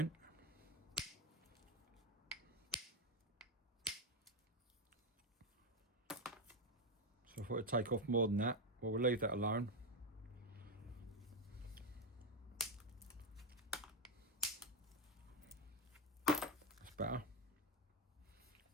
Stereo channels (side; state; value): both; normal; correlation 0.09